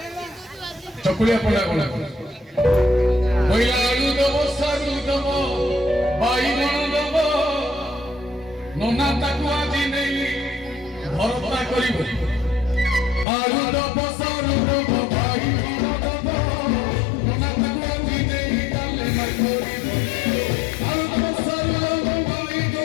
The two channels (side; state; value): right; drops out; at 13.2 s